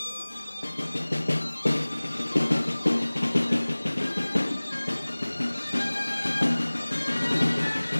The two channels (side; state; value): both; inverted; correlation -1.00